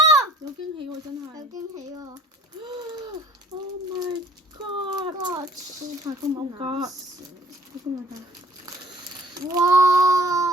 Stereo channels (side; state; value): both; normal; correlation 0.54